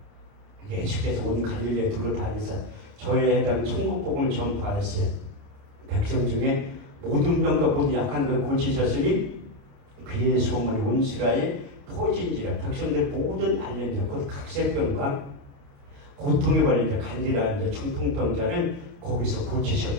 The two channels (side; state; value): left; late; 29 ms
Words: 예수께서 온 갈릴리에 두루 다니사 저에 해당 천국복음을 전파하셨어요. 백성 중에 모든 병과 모든 약한 걸 고치셨으니 그의 소문이 온 스라에 퍼진지라. 백성들 모든 알련자 곧 각색병과 고통에 걸린 자 간질환 자 중풍병자를 거기서